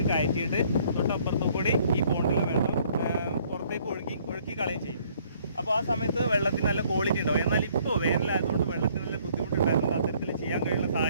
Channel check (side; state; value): both; inverted; correlation -0.62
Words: കയറ്റിയിട്ട് തൊട്ടപ്പുറത്ത് കൂടി ഈ പോണ്ടിലെ വെള്ളം പുറത്തേക്ക് ഒഴുക്കി കളയും ചെയ്യും. അപ്പോൾ ആ സമയത്ത് വെള്ളത്തിന് നല്ല ക്വാളിറ്റി ഉണ്ടാവും. എന്നാൽ ഇപ്പോൾ വേനലായതുകൊണ്ട് വെള്ളത്തിന് നല്ല ബുദ്ധിമുട്ടുണ്ടായതുകൊണ്ട് അത്തരത്തിൽ ചെയ്യാൻ കഴിയുന്ന